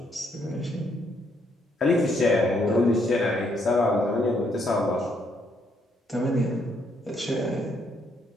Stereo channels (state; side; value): normal; both; correlation 0.73